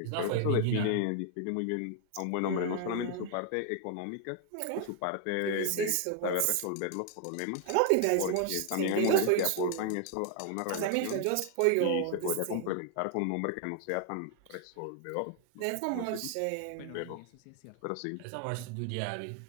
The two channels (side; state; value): both; different; correlation 0.00